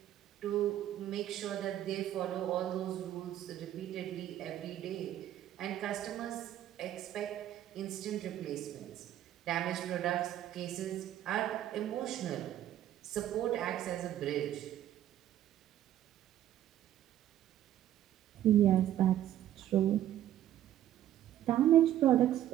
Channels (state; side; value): quieter; left; 12.1 dB